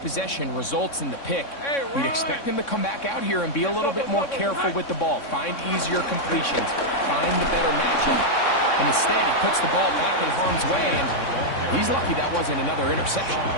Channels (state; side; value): late; right; 3.6 ms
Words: results in the pick. We'd expect him to come back out here and be a little bit more careful with the ball, find easier completions, find the better matchup. And instead, he puts the ball back in harm's way, and he's lucky that wasn't another interception.